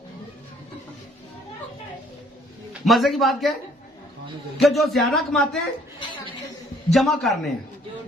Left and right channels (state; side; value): normal; both; correlation 0.61